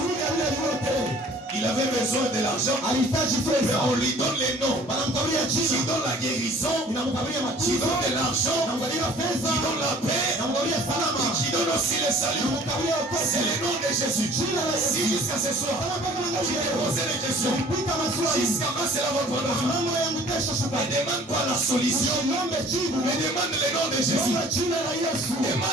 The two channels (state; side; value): normal; both; correlation 0.52